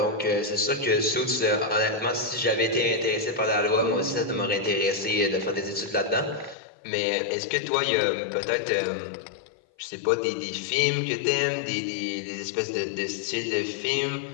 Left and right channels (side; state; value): right; drops out; at 6.6 s